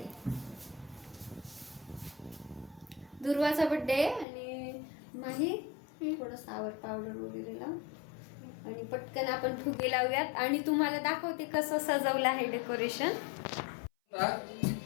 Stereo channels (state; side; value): drops out; right; at 4.2 s